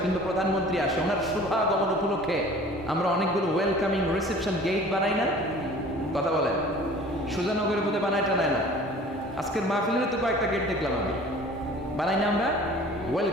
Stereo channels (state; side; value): normal; both; correlation 0.47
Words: কিন্তু প্রধানমন্ত্রী আসে, ওনার শুভাগমন উপলক্ষে আমরা অনেকগুলো ওয়েলকামিং রিসেপশন গেট বানাই না? কথা বলেন। সুজানগরের মধ্যে বানায় টানায় না? আজকের মাহফিলের তো কয়েকটা গেট দেখলাম আমি, বানাই না আমরা?